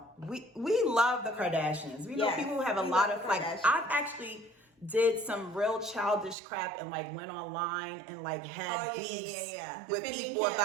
we love the Kardashians. We know people who have a lot of I've actually did some real childish crap and went online and had beefs with people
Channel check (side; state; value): left; drops out; at 6.4 s